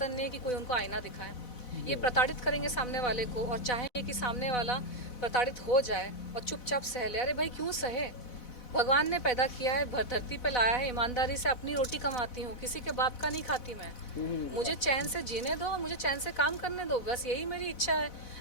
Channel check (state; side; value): late; right; 4.0 ms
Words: नहीं है कि कोई उनको आईना दिखाए। ये प्रताड़ित करेंगे सामने वाले को और चाहेंगे कि सामने वाला प्रताड़ित हो जाए और चुपचाप सह ले। अरे भाई क्यों सहे? भगवान ने पैदा किया है, धरती पे लाया है, ईमानदारी से अपनी रोटी कमाती हूँ, किसी के बाप का नहीं खाती मैं। मुझे चैन से जीने दो, मुझे चैन से काम करने दो, बस यही मेरी इच्छा है।